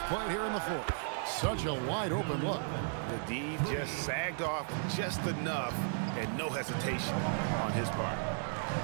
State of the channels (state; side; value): silent; left; digital silence